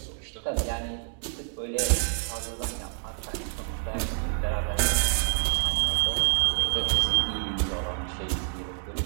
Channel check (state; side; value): silent; left; digital silence